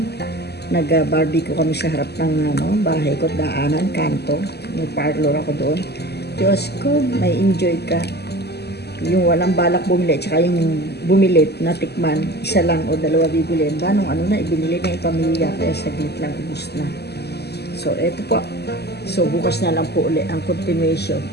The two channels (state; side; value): late; right; 0.48 ms